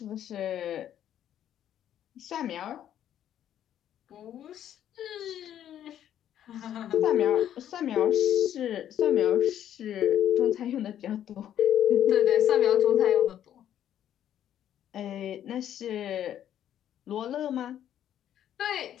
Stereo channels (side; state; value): right; quieter; 10.7 dB